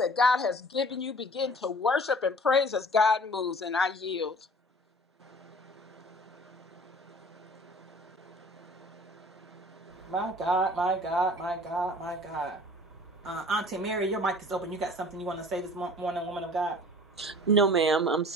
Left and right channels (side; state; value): both; normal; correlation 0.47